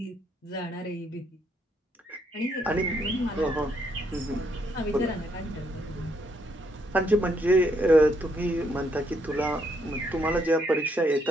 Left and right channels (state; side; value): normal; both; correlation 0.74